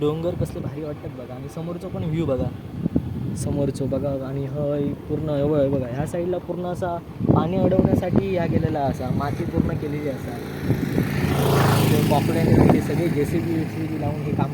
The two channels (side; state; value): both; identical; correlation 1.00